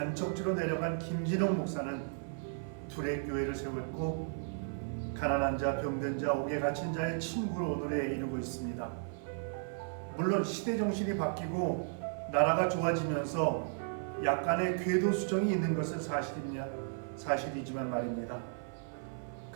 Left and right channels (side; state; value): left; silent; 55 dB below the other